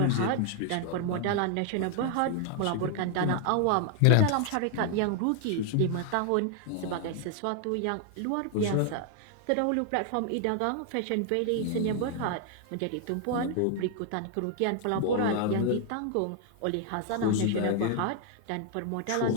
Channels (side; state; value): both; different; correlation 0.00